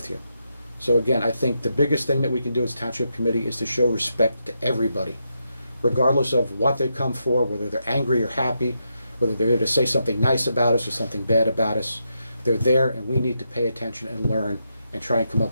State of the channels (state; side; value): inverted; both; correlation -0.83